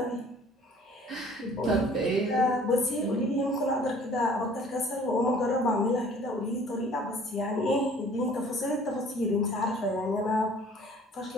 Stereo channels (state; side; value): normal; both; correlation 0.52